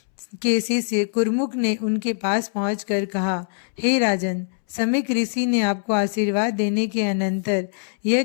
के शिष्य कुरमुक ने उनके पास पहुंचकर कहा, हे राजन, समीक ऋषि ने आपको आशीर्वाद देने के अनंतर यह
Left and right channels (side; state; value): right; silent; 64 dB below the other